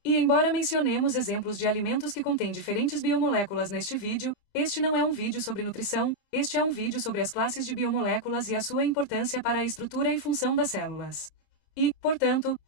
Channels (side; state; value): right; late; 27 ms